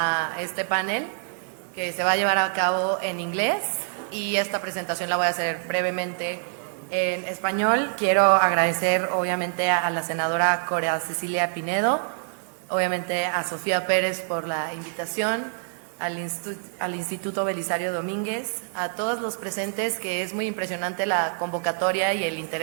este panel que se va a llevar a cabo en inglés y esta presentación la voy a hacer brevemente en español. Quiero agradecer obviamente a la senadora Corea Cecilia Pinedo, obviamente a Sofía Pérez por la invitación, al Instituto Belisario Domínguez, a todos los presentes, que es muy impresionante la convocatoria y el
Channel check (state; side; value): silent; left; digital silence